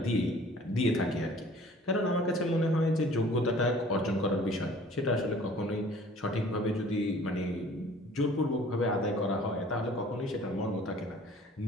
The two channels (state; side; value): normal; both; correlation 0.51